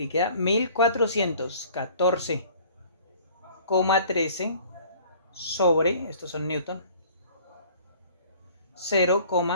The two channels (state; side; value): inverted; both; correlation -0.51